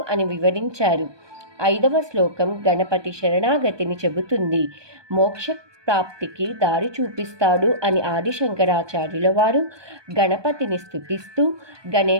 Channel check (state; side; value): late; left; 1.2 ms